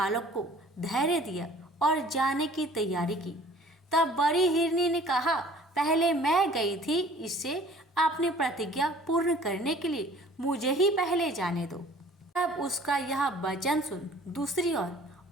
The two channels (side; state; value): both; normal; correlation 0.51